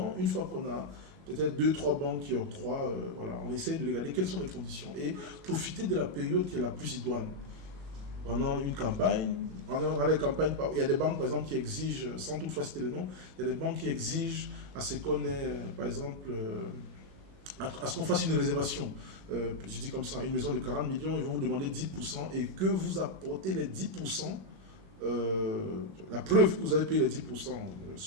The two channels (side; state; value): left; late; 21 ms